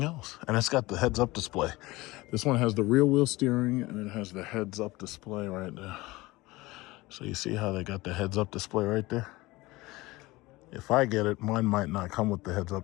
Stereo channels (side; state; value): right; quieter; 20.5 dB